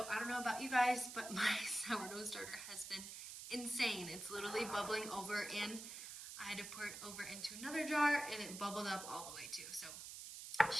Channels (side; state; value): right; noise; hiss, 9 dB below the sound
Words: I don't know about you guys, but my sourdough starter has been insane. It's literally bubbling over, and I had to pour it over into another jar, and it bubbled up all the way too. So